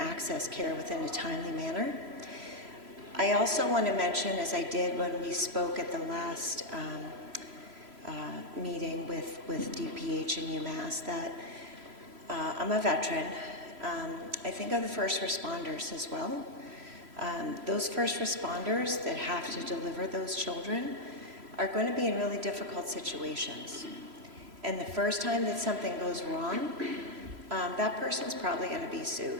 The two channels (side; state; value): left; late; 3.0 ms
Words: care within a timely manner. I also want to mention, as I did when we spoke at the last meeting with DPH and UMass, that I'm a veteran. I think of the first responders as well. Those first responders that have to deliver those children are going to be in really difficult situations. And the first time that something goes wrong, that person's probably going to be